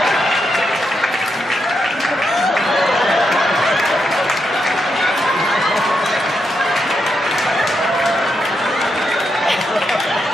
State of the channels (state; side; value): normal; both; correlation 0.83